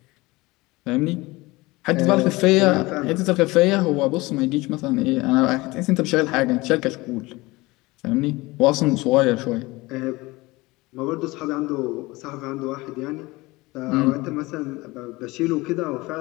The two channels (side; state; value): right; quieter; 21.7 dB